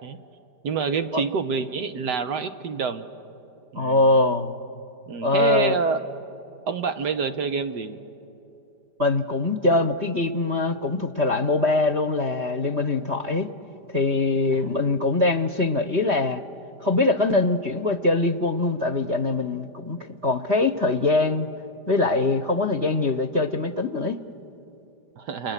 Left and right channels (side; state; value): left; late; 5.0 ms